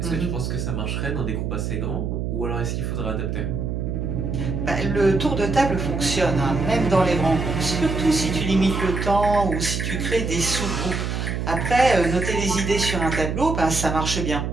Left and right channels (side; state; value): right; noise; hum, 2 dB below the sound